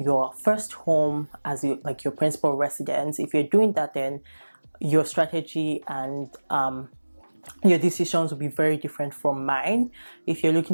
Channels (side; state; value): both; inverted; correlation -1.00